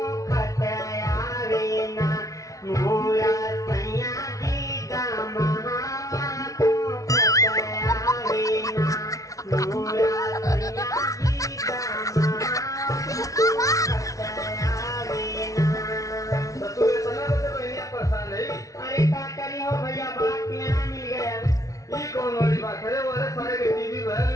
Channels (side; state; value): right; late; 0.17 ms